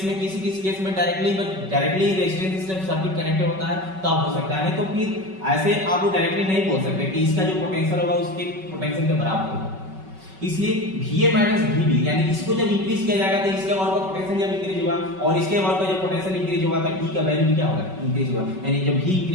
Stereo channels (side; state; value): left; late; 5.3 ms